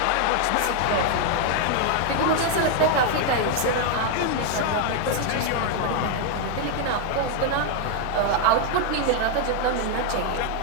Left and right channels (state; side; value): different; both; correlation 0.00